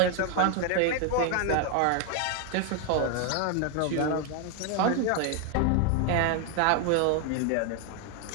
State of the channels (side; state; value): both; different; correlation 0.00